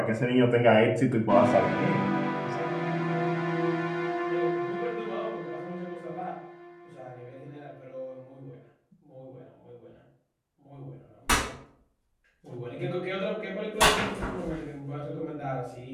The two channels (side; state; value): both; identical; correlation 1.00